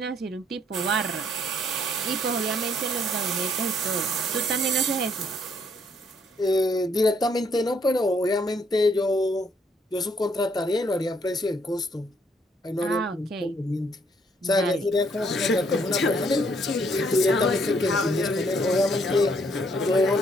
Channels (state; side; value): normal; both; correlation 0.68